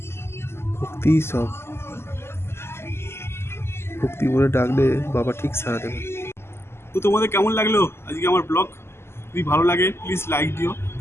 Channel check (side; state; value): right; late; 0.12 ms